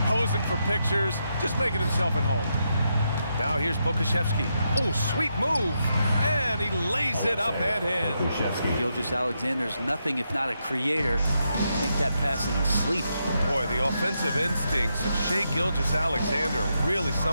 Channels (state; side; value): inverted; both; correlation -0.82